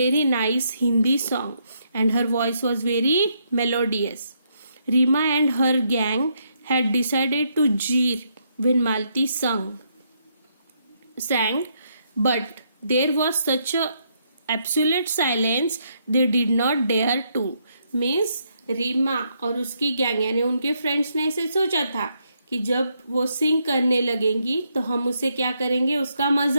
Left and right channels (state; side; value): inverted; both; correlation -0.75